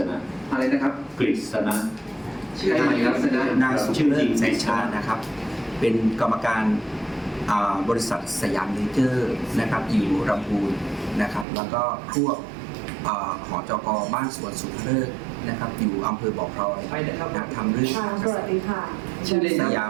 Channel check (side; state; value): left; drops out; at 11.5 s